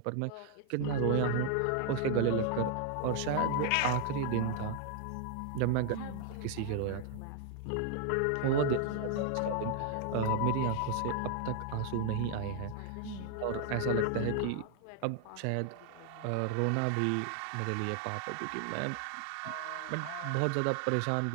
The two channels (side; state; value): both; different; correlation 0.00